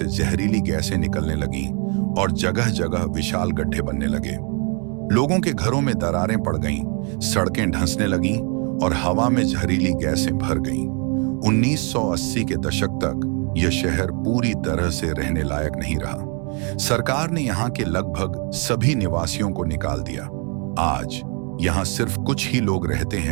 जहरीली गैसें निकलने लगीं और जगह जगह विशाल गड्ढे बनने लगे। लोगों के घरों में दरारें पड़ गईं, सड़कें धंसने लगीं और हवा में जहरीली गैसें भर गईं। 1980 के दशक तक यह शहर पूरी तरह से रहने लायक नहीं रहा। सरकार ने यहाँ के लगभग सभी निवासियों को निकाल दिया। आज यहाँ सिर्फ कुछ ही लोग रहते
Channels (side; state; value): left; quieter; 35.7 dB